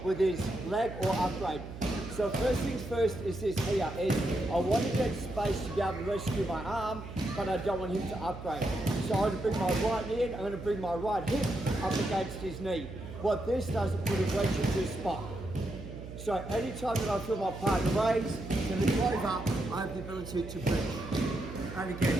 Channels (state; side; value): noise; right; hum, 12 dB below the sound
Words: with his leg or upgrade. So first things first is this here, is I want to get space to be able to rescue my arm, but I don't want him to upgrade. So I'm going to bring my right knee in, I'm going to bring my right hip up against his knee. What this does is put a wedge into a spot. So anytime that I feel my partner raise to lift over, I have the ability to bridge. And